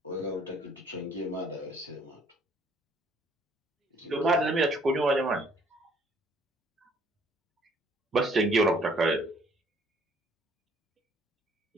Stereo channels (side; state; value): both; normal; correlation 0.61